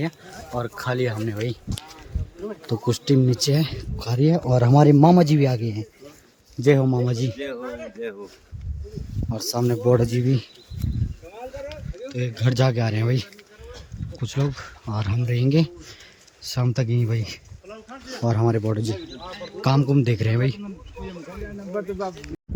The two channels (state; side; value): identical; both; correlation 1.00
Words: और खा लिया हमने भाई। तो कुछ टीम नीचे है खा रही है, और हमारे मामा जी भी आ गए हैं। जय हो मामा जी। और सामने बॉर्डर जी भी। तो एक घर जाके आ रहे हैं भाई कुछ लोग, और हम रहेंगे शाम तक यहीं भाई। और हमारे बॉर्डर जी काम कुम देख रहे हैं भाई।